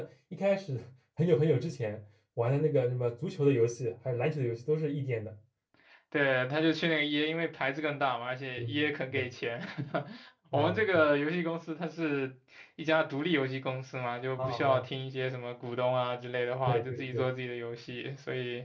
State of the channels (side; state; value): both; identical; correlation 1.00